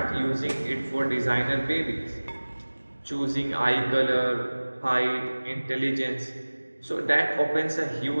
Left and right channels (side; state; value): both; inverted; correlation -1.00